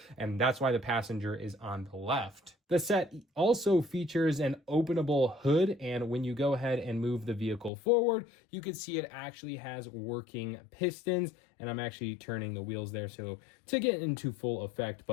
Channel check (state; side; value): drops out; right; at 7.7 s